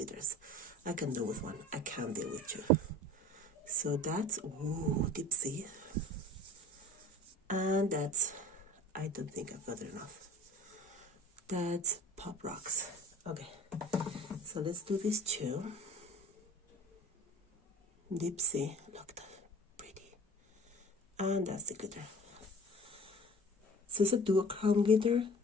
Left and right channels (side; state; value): both; normal; correlation 0.43